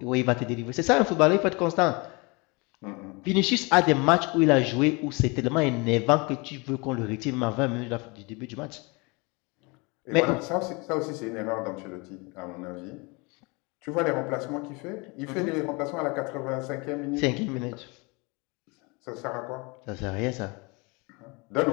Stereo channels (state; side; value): quieter; right; 28.2 dB